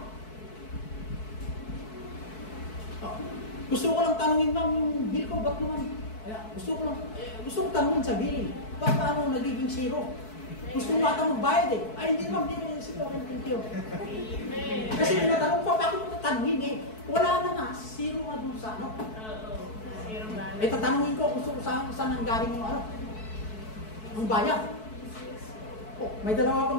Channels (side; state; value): right; late; 4.6 ms